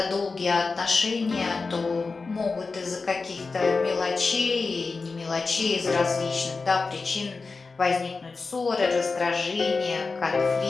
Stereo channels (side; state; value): right; quieter; 4.2 dB